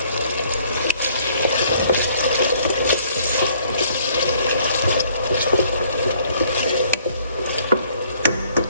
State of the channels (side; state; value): both; inverted; correlation -0.61